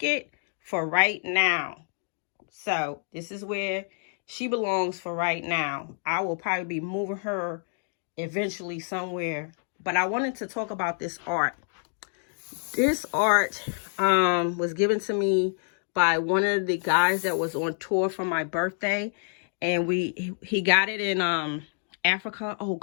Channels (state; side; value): silent; right; 56 dB below the other